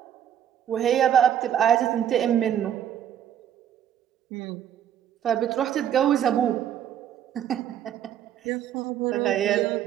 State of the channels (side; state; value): left; quieter; 10.1 dB